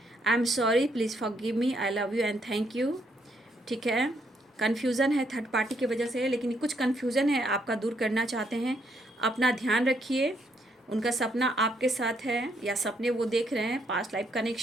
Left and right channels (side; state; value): both; normal; correlation 0.73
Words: I am sorry, please forgive me, I love you and thank you, ठीक है। कन्फ्यूज़न है थर्ड पार्टी की वजह से, लेकिन कुछ कन्फ्यूज़न है आपका दूर करना चाहते हैं। अपना ध्यान रखिए, उनका सपना आपके साथ है या सपने वो देख रहे हैं। Past life